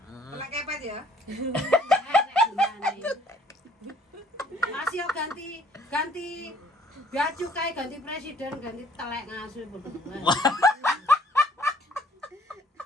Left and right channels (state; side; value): normal; both; correlation 0.59